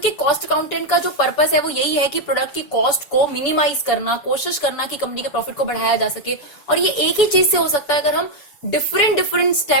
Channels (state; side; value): late; right; 7.0 ms